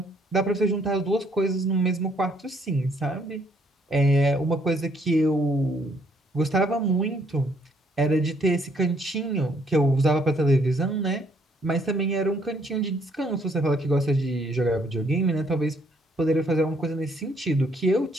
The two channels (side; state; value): both; normal; correlation 0.67